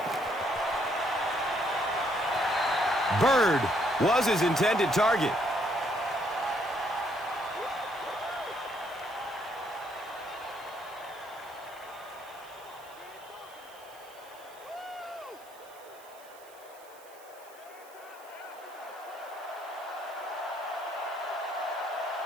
Byrd was his intended target.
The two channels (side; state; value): right; noise; hiss, 23 dB below the sound